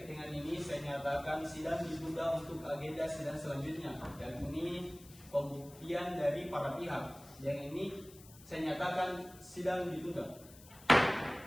dengan ini saya nyatakan sidang ditunda untuk agenda sidang selanjutnya, yakni pembuktian dari para pihak. Yang ini saya nyatakan sidang ditunda.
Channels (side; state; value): left; noise; hiss, 21 dB below the sound